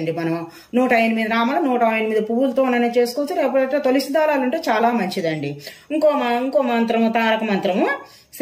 మనం 108 రామలు 108 పువ్వులతోనే చేసుకోవచ్చు. లేకపోతే తులసి దళాలు ఉంటే చాలా మంచిదండి. ఇంకో మంత్రము తారక మంత్రము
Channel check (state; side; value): identical; both; correlation 1.00